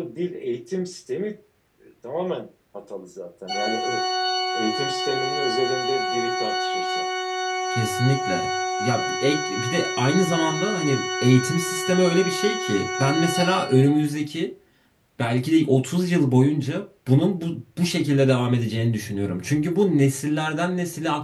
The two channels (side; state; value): both; identical; correlation 1.00